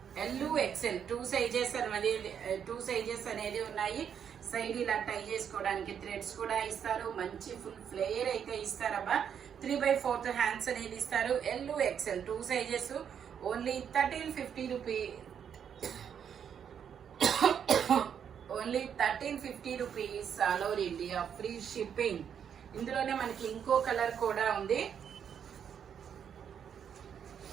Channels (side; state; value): left; quieter; 8.1 dB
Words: L, XL 2 sizes అనేది ఉన్నాయి. సైడ్ ఇలా టై చేసుకోవడానికి థ్రెడ్స్ కూడా ఇస్తారు. మంచి ఫుల్ ఫ్లేయర్ అయితే ఇస్తారబ్బా. 3/4 హ్యాండ్స్ అనేది ఇస్తారు. L, XL 2 sizes. Only 1350 rupees. Only 1350 rupees all over India free shipping. ఇందులోనే మనకి ఇంకో కలర్ కూడా ఉంది.